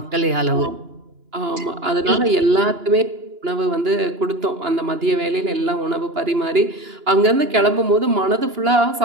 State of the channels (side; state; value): left; late; 2.9 ms